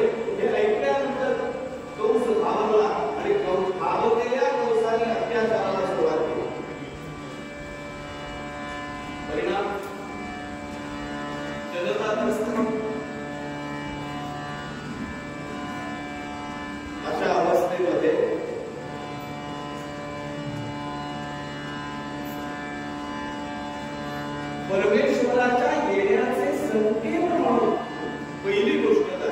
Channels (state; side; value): identical; both; correlation 1.00